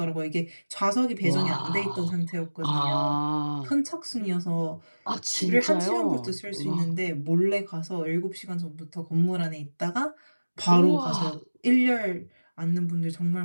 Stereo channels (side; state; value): both; inverted; correlation -1.00